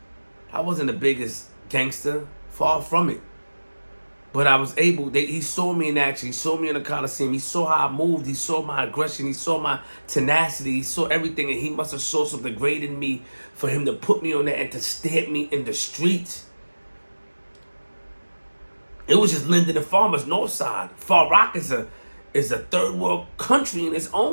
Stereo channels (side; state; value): both; inverted; correlation -1.00